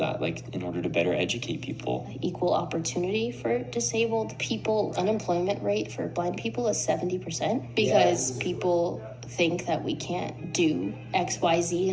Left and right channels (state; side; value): identical; both; correlation 1.00